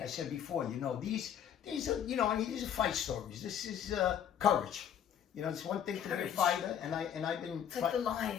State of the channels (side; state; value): right; quieter; 9.3 dB